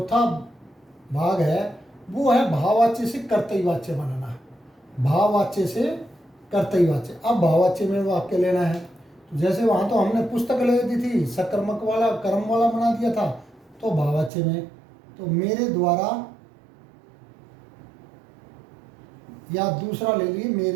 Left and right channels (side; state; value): left; drops out; at 14.3 s